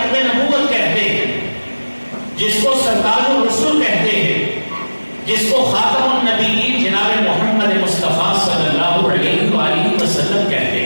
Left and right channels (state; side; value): inverted; both; correlation -1.00